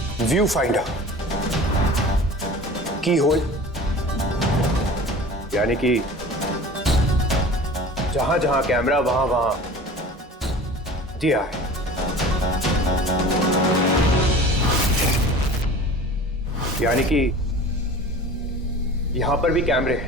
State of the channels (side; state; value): both; normal; correlation 0.40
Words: व्यू फाइंडर, की होल, यानी कि जहां जहां कैमरा वहां वहां दिया है। यानी कि यहां पर भी कैमरे